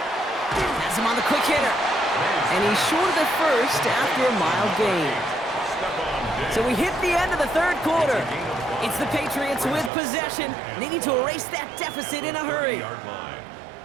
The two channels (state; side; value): drops out; left; at 9.9 s